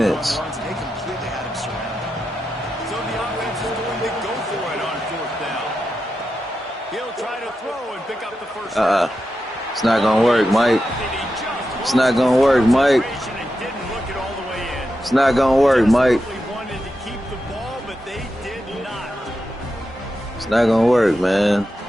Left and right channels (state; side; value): normal; both; correlation 0.89